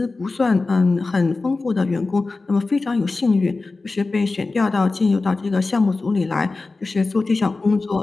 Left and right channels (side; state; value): right; quieter; 3.6 dB